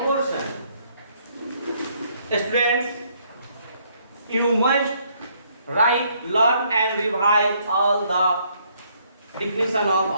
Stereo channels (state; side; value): inverted; both; correlation -0.68